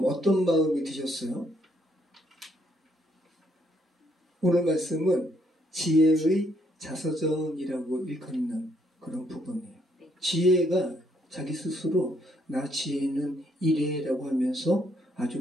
어떤 마음이 드셨어요? 오늘 말씀은 지혜의 자서전이라고 일컫는 그런 부분이에요. 지혜가 자기 스스로 나 지혜는 이래라고 하면서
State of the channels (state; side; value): normal; both; correlation 0.71